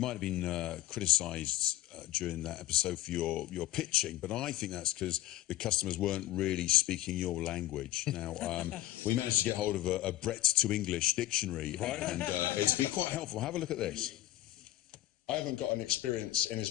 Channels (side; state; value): right; quieter; 15.5 dB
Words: have been criticised during that episode for your pitching, but I think that's because the customers weren't really speaking your language. Now, we managed to get hold of a Brett to English dictionary, and it's been quite helpful. Have a look at this. I haven't got an experience in